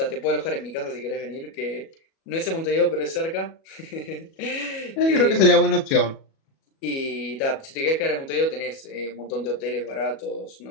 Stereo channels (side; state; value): right; late; 37 ms